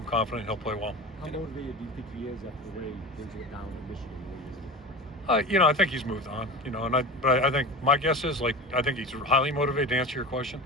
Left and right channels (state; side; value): normal; both; correlation 0.30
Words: confident he'll play well. How motivated do you think he is after the way things went down in Michigan? I think he's moved on. But I think my guess is I think he's highly motivated. To answer your question,